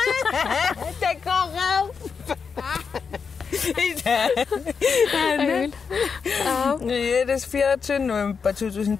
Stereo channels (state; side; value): quieter; right; 5.8 dB